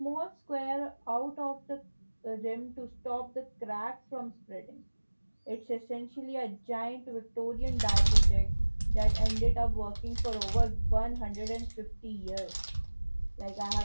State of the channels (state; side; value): inverted; both; correlation -1.00